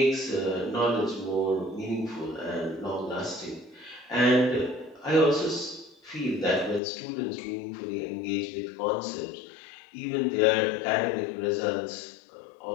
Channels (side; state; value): right; drops out; at 6.8 s